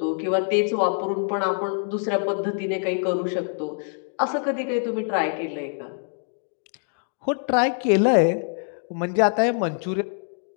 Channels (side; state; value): right; silent; 60 dB below the other